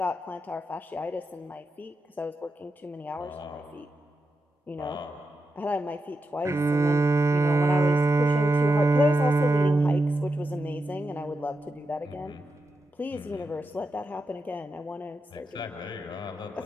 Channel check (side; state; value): both; normal; correlation 0.87